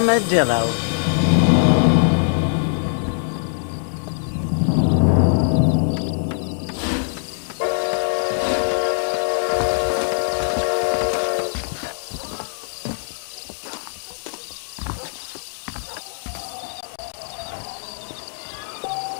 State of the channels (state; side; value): silent; right; digital silence